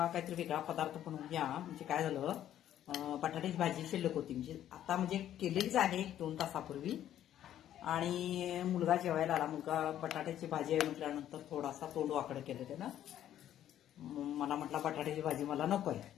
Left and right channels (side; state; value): right; quieter; 11.4 dB